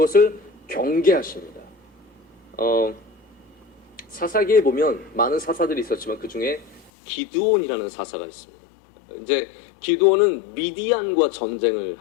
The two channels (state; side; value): drops out; right; at 6.9 s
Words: 경계하십니다. 사사기에 보면 많은 사사들이 있었지만 그 중에 기드온이라는 사사가 있습니다. 이제 기드온은 미디안과 전쟁을